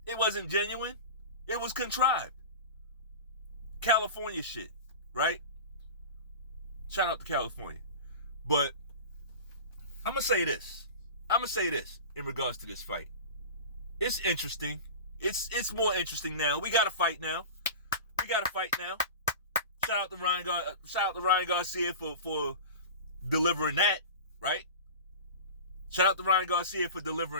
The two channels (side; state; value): both; inverted; correlation -0.32